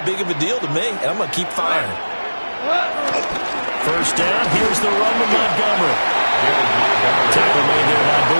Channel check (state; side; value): inverted; both; correlation -1.00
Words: big of a deal to me, and I'm going to keep firing. First down, here's the run with Montgomery. Tackle made there by